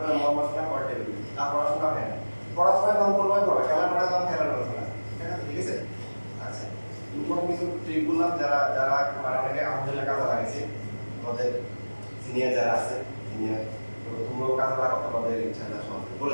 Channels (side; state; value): both; inverted; correlation -1.00